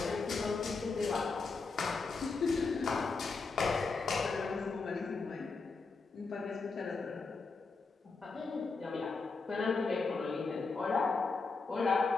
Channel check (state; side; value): quieter; right; 4.3 dB